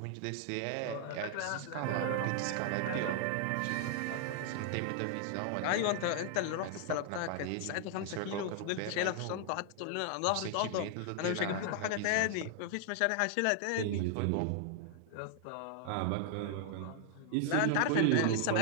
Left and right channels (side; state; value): both; different; correlation 0.00